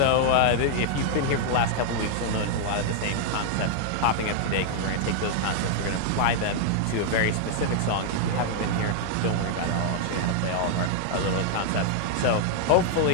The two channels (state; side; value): different; both; correlation 0.00